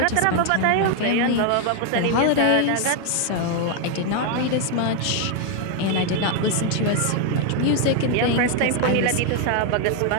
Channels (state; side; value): different; both; correlation 0.01